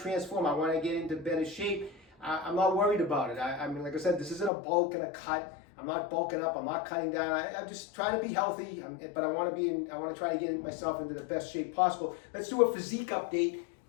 I want to get into better shape. I'm not worried about it. I mean, like I said, this isn't a bulk and a cut. I'm not bulking up. I'm not cutting down. I'm just trying to be healthy. But I want to try to get myself into the best shape possible. Let's do a physique update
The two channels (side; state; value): right; drops out; at 4.5 s